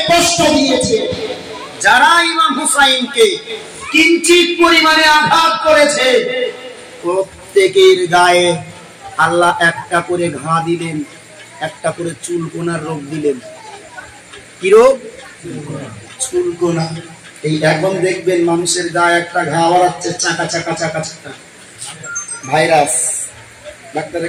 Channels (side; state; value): both; identical; correlation 1.00